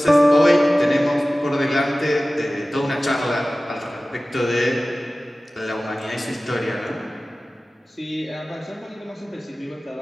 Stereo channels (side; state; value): both; normal; correlation 0.97